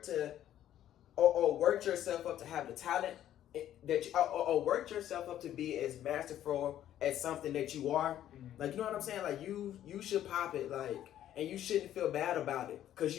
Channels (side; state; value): right; quieter; 11.7 dB